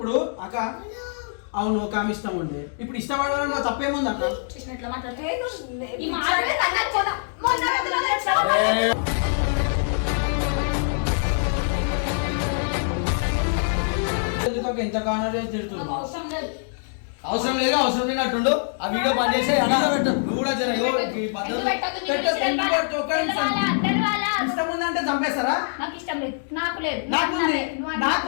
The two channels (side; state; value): right; silent; digital silence